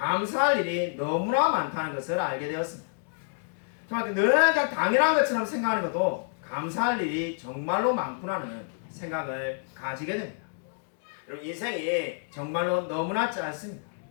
일이 너무나 많다는 것을 알게 되었습니다. 정말 늘 그냥 당연한 것처럼 생각하는 것도 감사할 일이 정말로 많구나는 생각을 가지게 됩니다. 여러분, 인생이 정말로 너무나 짧습니다.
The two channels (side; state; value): right; silent; digital silence